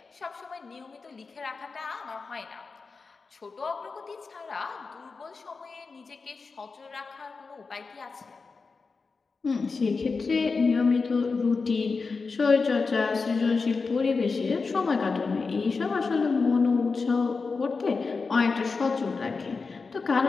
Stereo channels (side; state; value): right; quieter; 4.5 dB